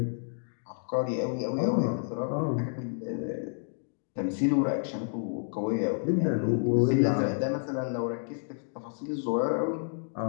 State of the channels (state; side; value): silent; right; digital silence